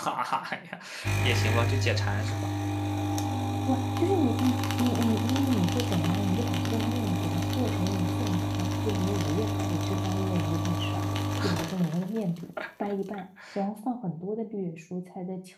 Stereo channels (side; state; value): both; identical; correlation 1.00